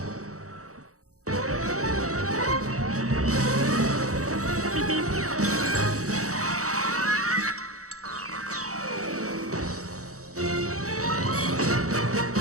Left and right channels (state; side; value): late; left; 0.65 ms